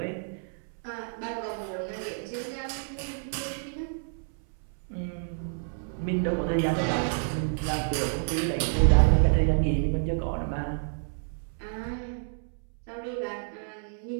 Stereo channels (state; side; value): silent; left; 58 dB below the other